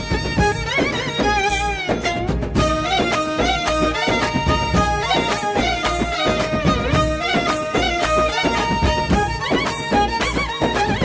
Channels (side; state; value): both; identical; correlation 1.00